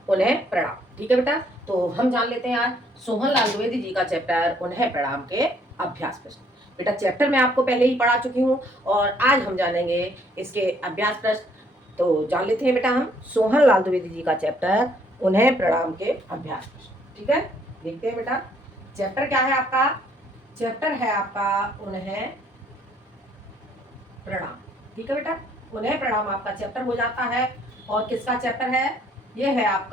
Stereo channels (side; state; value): both; normal; correlation 0.65